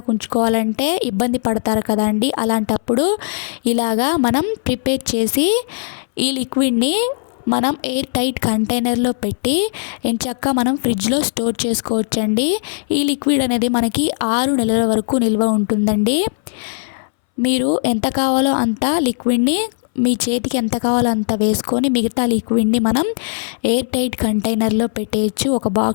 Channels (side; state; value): right; silent; 63 dB below the other